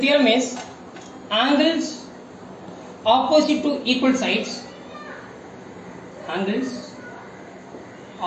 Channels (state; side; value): identical; both; correlation 1.00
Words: is angles opposite to equal sides, angles